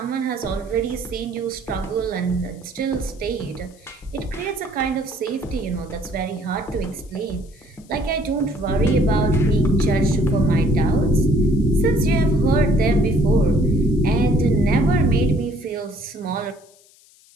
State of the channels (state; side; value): noise; left; hiss, 28 dB below the sound